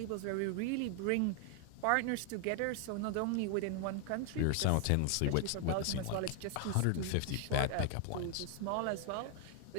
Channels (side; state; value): both; different; correlation 0.00